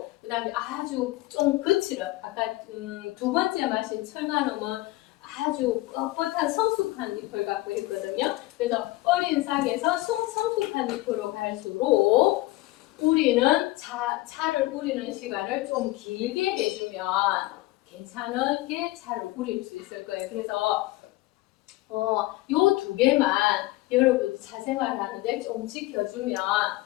그 다음에 아주 좀 거칠은 아까 두 번째 마신 철가놈은 아주 뻣뻣한 성숙한 잎을 갖고 있거든요. 그래서 어린 싹에서 성숙한 잎으로 갈수록 우리는 차를 우리는 시간을 좀 길게 해주면 괜찮게 차를 우릴 수 있을 거예요. 그래서 요 두 개만 여러분 차생활 하는데 좀 지켜주면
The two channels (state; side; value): quieter; right; 18.9 dB